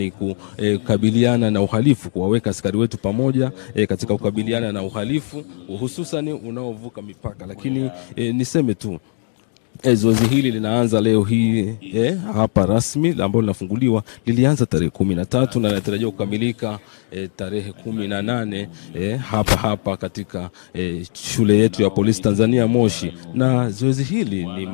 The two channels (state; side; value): silent; right; digital silence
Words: kukabiliana na uhalifu, kuwaweka askari wetu pamoja katika kukabiliana na uhalifu hususan unaovuka mipaka. Lakini niseme tu zoezi hili linaanza leo hii hapa rasmi ambalo linafunguliwa, lilianza tarehe 13 na linatarajiwa kukamilika tarehe 18 hapa katika shule yetu ya polisi Tanzania Moshi. Na zoezi hili ni